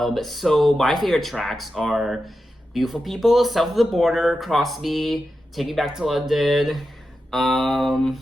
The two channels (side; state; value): both; normal; correlation 0.90